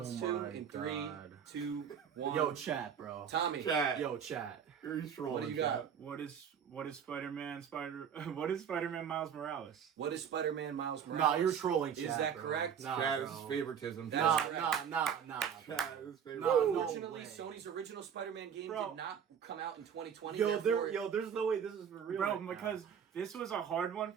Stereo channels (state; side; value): quieter; left; 7.9 dB